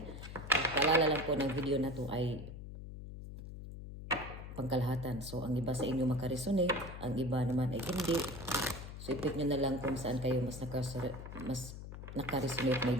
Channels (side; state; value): left; noise; hum, 11 dB below the sound